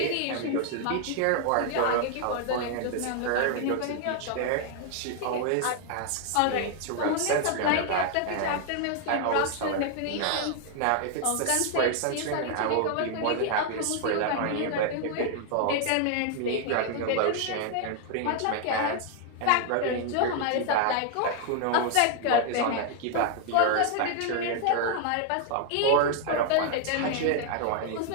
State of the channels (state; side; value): different; both; correlation 0.00